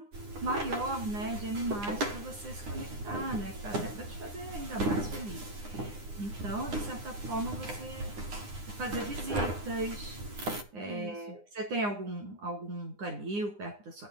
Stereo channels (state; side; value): late; left; 9.8 ms